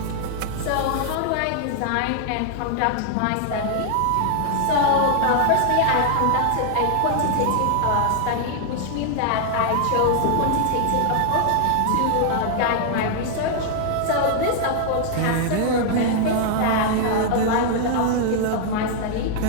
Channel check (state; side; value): different; both; correlation 0.00